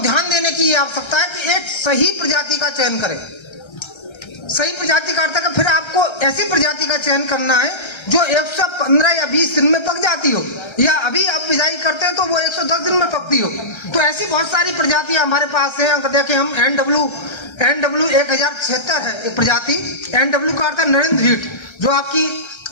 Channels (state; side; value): late; right; 1.3 ms